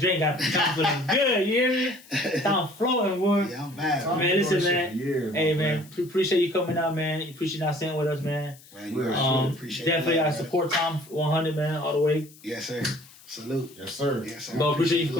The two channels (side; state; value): left; noise; hiss, 23 dB below the sound